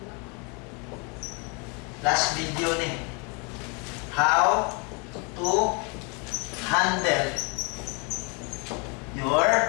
last video ni. How to handle your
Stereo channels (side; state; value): right; quieter; 33.2 dB